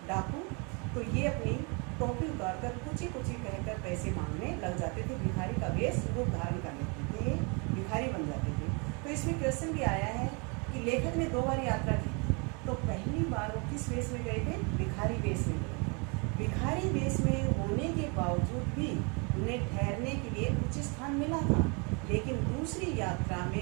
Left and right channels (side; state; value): left; quieter; 32.5 dB